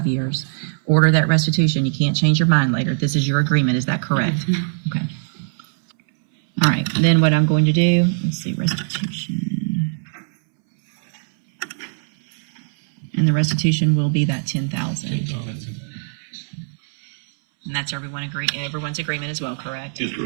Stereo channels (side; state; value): left; silent; 65 dB below the other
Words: years, order that restitution, you can't change your mind later. This is your agreement. Is that correct? Okay. All right. Then what I'm going to do, let's see, restitution. And the restitution will be that $10,000. And that's everyone's agreement as well, correct? Is